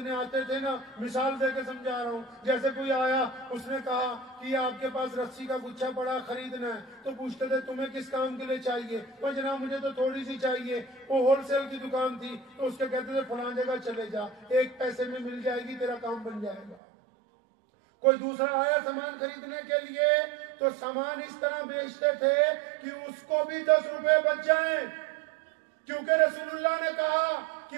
آتے تھے نا، مثال دے کے سمجھا رہا ہوں، جیسے کوئی آیا اس نے کہا کہ آپ کے پاس رسی کا گچھا پڑا خریدنا ہے، تو پوچھتے تھے تمہیں کس کام کے لیے چاہیے؟ وہ جناب مجھے تو تھوڑی سی چاہیے. وہ ہول سیل کی دکان تھی، تو اس کے کہتے تھے فلاں جگہ چلے جا، 1 پیسے میں مل جائے گی، تیرا کام بن جائے گا. کوئی دوسرا آیا سامان خریدنے کے لیے تو سامان اس طرح بیچتے تھے کہ اس کو بھی 10 روپے بچ جائیں، کیونکہ رسول اللہ نے کہا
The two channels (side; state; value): left; drops out; at 16.8 s